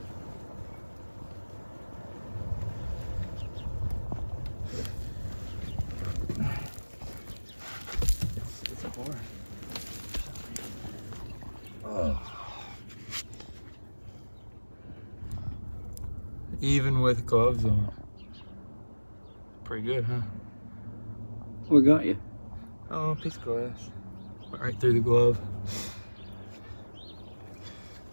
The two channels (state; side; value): inverted; both; correlation -1.00